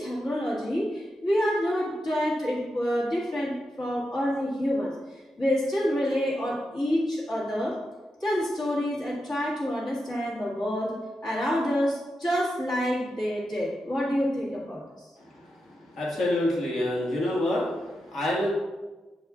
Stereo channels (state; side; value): normal; both; correlation 0.87